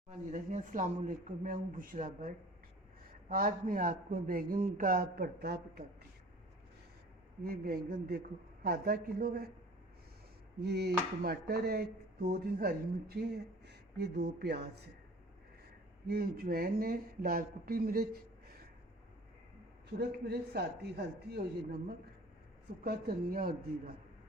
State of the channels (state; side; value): normal; both; correlation 0.46